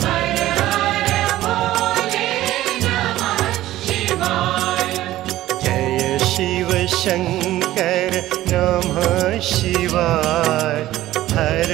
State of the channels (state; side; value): quieter; left; 15.1 dB